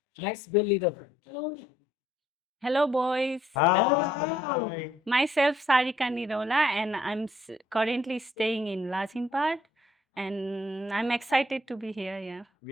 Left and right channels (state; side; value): normal; both; correlation 0.67